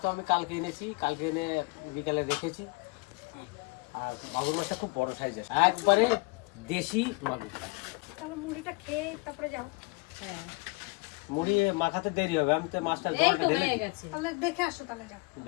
আমি কালকে এনেছি, কালকে এনে বিকালে রেখেছি। আর মাগুর মাছটা খুব বড় সাইজের, একবারে দেশি মাগুর। তাহলে মুড়িটা খেয়ে তারপরে যাও। হ্যাঁ, মুড়ি মাখাতে দেরি হবে, আমি তো মাছটা এই জলটা তো ঢেলে হয়ে দিই। গেছে। তাহলে দেখে আসো, তাহলে যাও।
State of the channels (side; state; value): right; quieter; 28.1 dB